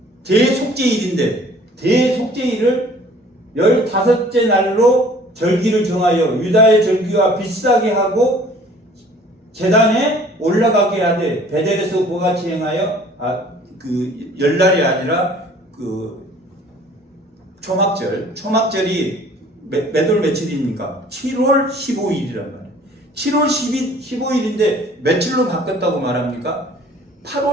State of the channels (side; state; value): both; normal; correlation 0.52